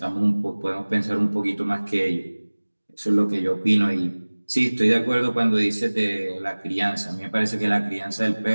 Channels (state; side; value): inverted; both; correlation -1.00